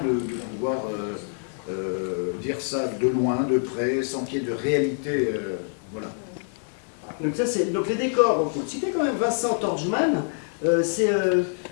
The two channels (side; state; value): right; silent; 57 dB below the other